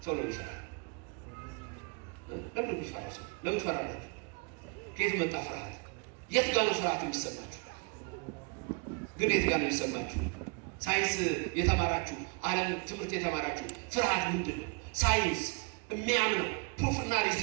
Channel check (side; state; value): left; quieter; 32.2 dB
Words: ሰው ለምን ይፈራል? ለምን ይፈራል? ሰው ለምን ትፈራለህ? ከየት መጣ ፍርሃት? የት ጋር ነው ፍርሃት የሚሰማችሁ? ግን የት ጋር ነው የሚሰማችሁ? ሳይንስ የተማራችሁ ዓለም ትምህርት የተማራችሁ ፍርሃት ምንድን ነው? ሳይንስ የሚያምነው ፕሩፍና